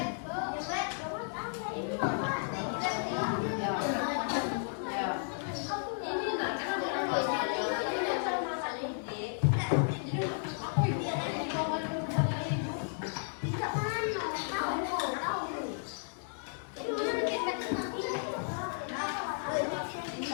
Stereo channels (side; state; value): right; silent; digital silence